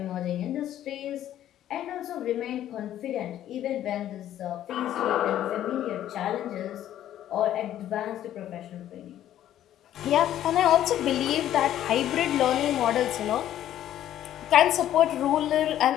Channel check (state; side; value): quieter; right; 11.9 dB